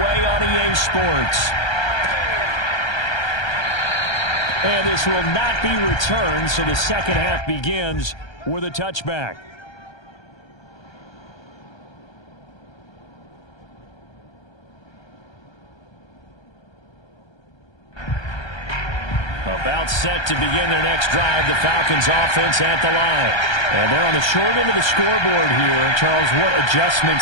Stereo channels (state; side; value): late; right; 1.3 ms